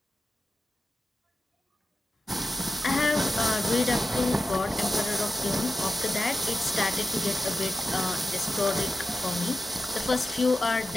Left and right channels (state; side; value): normal; both; correlation 0.92